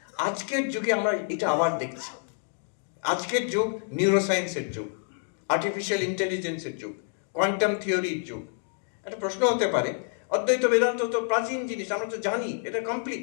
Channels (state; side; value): silent; right; 60 dB below the other